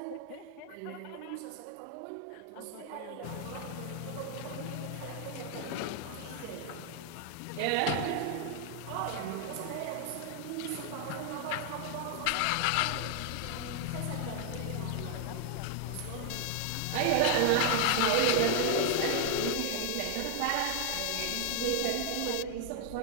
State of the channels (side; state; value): both; different; correlation 0.00